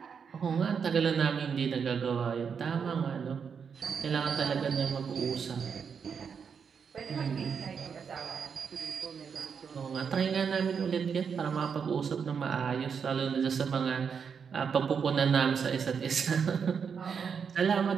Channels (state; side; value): quieter; left; 6.5 dB